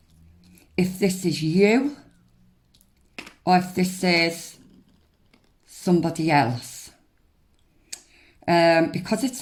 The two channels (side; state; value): both; identical; correlation 1.00